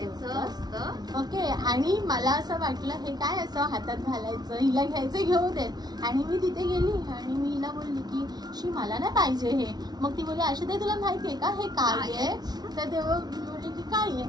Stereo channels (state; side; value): late; left; 0.19 ms